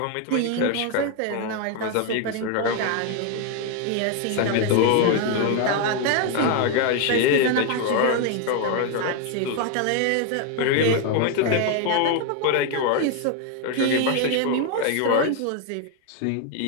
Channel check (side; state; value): both; different; correlation 0.01